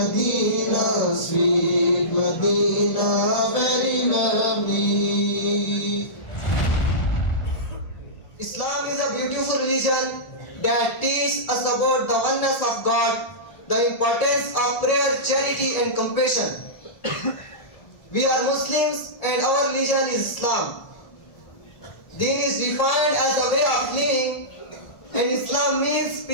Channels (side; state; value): right; late; 1.8 ms